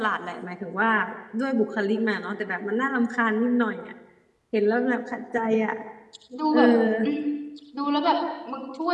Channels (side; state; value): both; identical; correlation 1.00